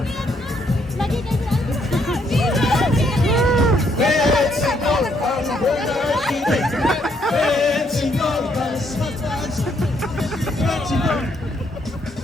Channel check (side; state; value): both; normal; correlation 0.72